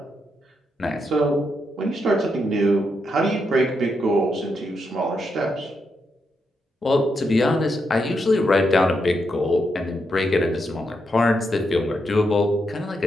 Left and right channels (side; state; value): both; normal; correlation 0.82